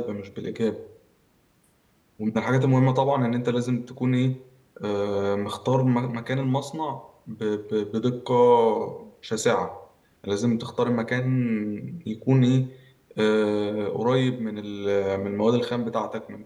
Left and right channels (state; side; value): identical; both; correlation 1.00